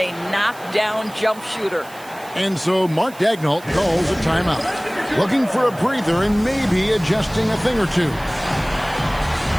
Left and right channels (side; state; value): right; noise; hiss, 21 dB below the sound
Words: knockdown jump shooter? And so Mark Daigneault calls a timeout. Looking for a breather and maybe adjusting a thing or two.